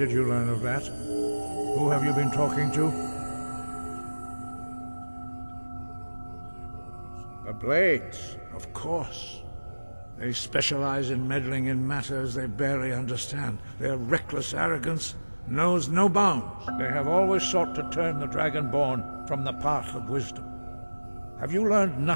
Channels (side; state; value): both; inverted; correlation -1.00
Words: you learn of that? Who have you been talking to? The Blades, of course. They specialize in meddling in matters they barely understand. Their reckless arrogance knows no bounds. They have always sought to turn the Dragonborn from the path of wisdom. Have you learned